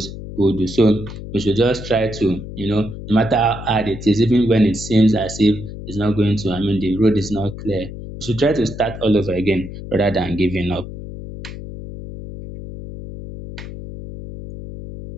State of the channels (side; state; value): left; noise; hum, 11 dB below the sound